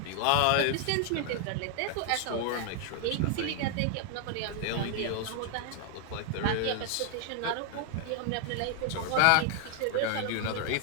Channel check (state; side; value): different; both; correlation 0.00